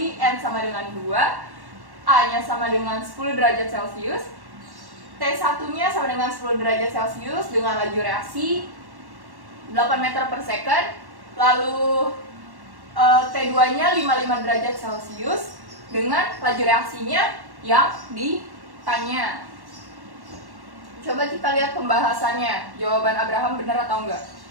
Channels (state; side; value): late; left; 1.1 ms